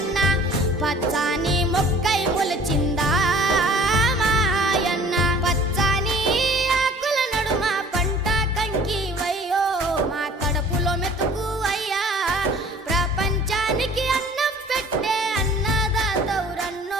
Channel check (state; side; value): normal; both; correlation 0.49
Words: పచ్చాని మొక్కై మొలచిందా మాయన్న, పచ్చాని ఆకుల నడుమ పంట కంకి వయ్యో మా కడుపులో మెతుకు అయ్యా, ప్రపంచానికి అన్నం పెట్టే